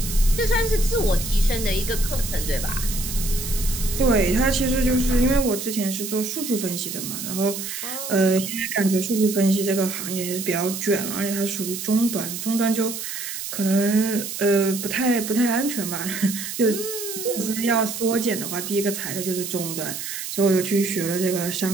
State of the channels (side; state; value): right; noise; hiss, 6 dB below the sound